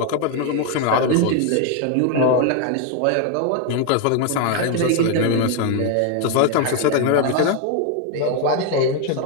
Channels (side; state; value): both; different; correlation 0.01